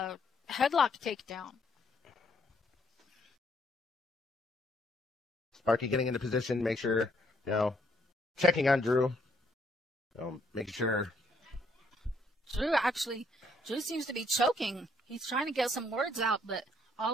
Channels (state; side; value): normal; both; correlation 0.69